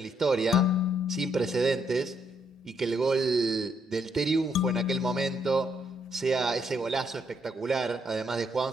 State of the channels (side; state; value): both; normal; correlation 0.73